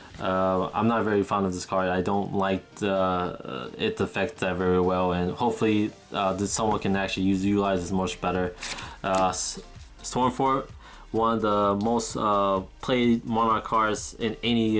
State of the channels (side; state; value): both; identical; correlation 1.00